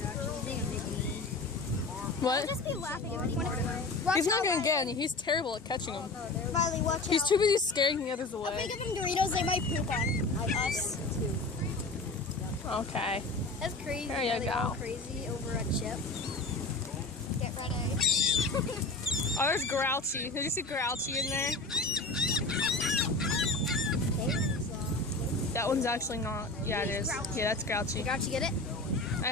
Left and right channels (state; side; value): quieter; right; 3.3 dB